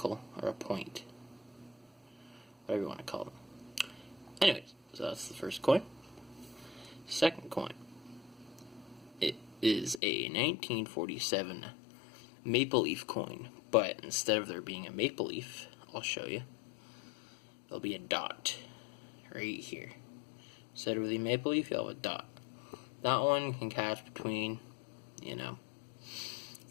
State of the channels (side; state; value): right; drops out; at 10.0 s